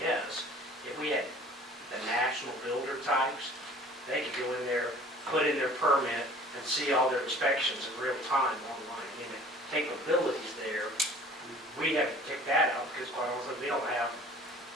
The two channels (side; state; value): both; normal; correlation 0.49